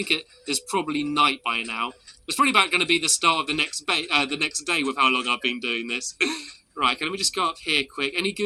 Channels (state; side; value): identical; both; correlation 1.00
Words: it is probably night by now. It's probably about going to be the start of the next day with how long I've been doing this. Right, okay, let me just go up here quick. Any